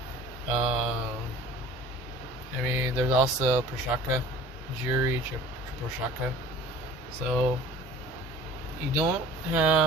I mean, there's also Prochazka, Jiri Prochazka. So you don't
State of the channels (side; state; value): both; normal; correlation 0.46